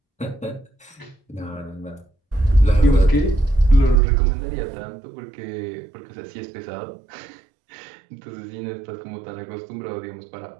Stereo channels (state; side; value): drops out; left; at 4.0 s